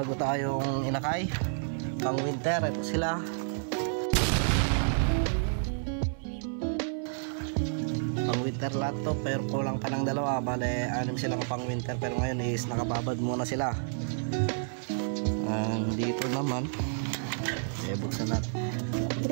tayong inakay pang winter. Ito sila, pang winter lahat to, pero kulang pa ng dalawa. Bale, 6 silang pang winter, pero ngayon is nakababad muna sila. Dito naman buksan natin.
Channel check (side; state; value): left; silent; 56 dB below the other